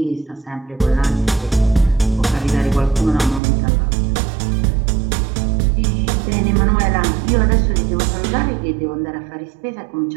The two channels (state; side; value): drops out; left; at 3.4 s